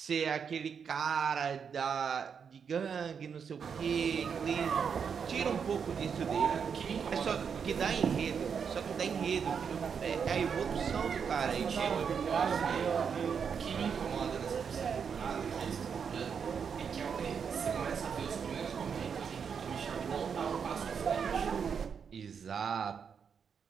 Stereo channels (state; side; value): quieter; left; 6.7 dB